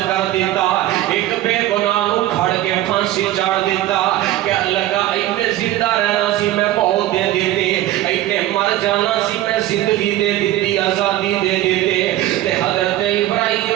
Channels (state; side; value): quieter; left; 14.5 dB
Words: کر دیتا ایک بے گناہ نو کھڑ کے پھانسی چاڑ دیتا کہ لگا اینے زندہ رہنا سی میں موت دے دیتے اینے مر جانا سی میں زندگی دے دیتی آزادی دے دیتے تے حضرت